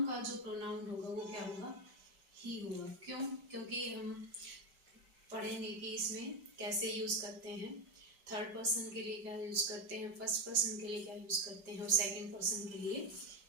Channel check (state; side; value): late; left; 5.0 ms